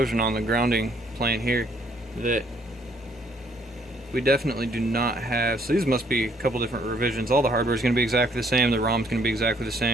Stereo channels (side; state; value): both; normal; correlation 0.66